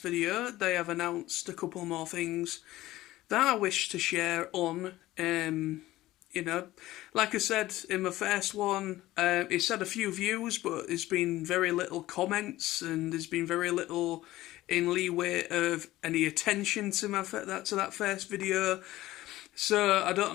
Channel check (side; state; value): right; quieter; 16.4 dB